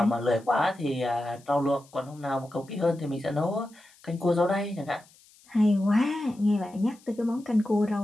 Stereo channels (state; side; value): noise; left; hiss, 28 dB below the sound